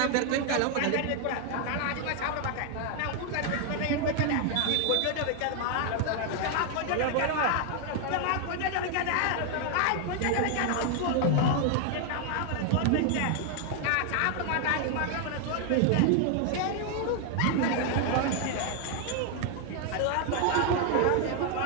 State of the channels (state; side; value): different; both; correlation 0.00